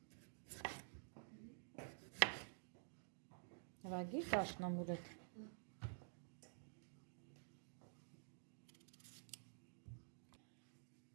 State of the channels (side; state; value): left; silent; digital silence